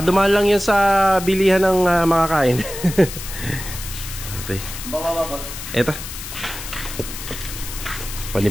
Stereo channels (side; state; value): left; noise; hiss, 10 dB below the sound